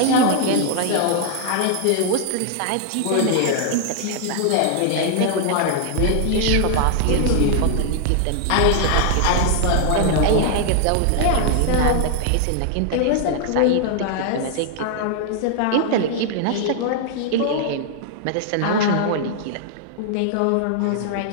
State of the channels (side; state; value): both; different; correlation 0.00